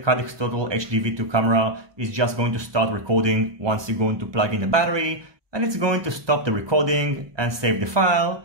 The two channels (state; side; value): late; left; 1.2 ms